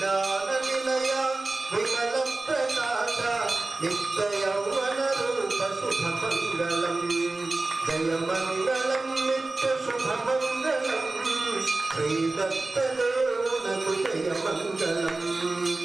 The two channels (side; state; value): left; quieter; 3.2 dB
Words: నిలయ విమల ప్రకాశ నిత్య యౌవన శ్రీదత్తదేవునకు జయమంగళం